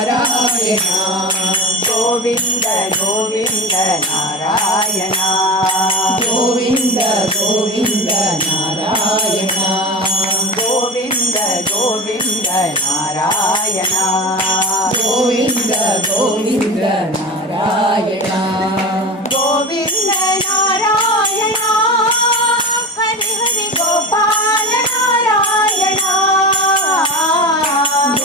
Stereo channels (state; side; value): normal; both; correlation 0.29